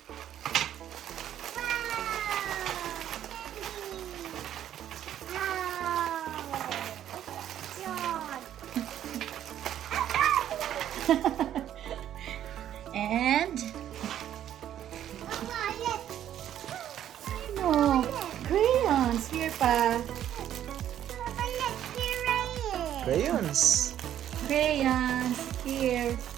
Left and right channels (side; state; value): left; quieter; 11.0 dB